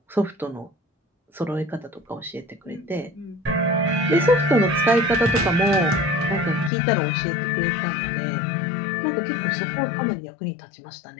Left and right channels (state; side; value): drops out; right; at 6.7 s